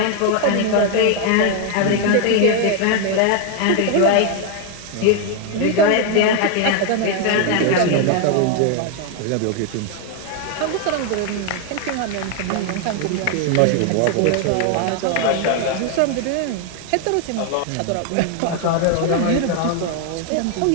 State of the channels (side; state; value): both; different; correlation 0.00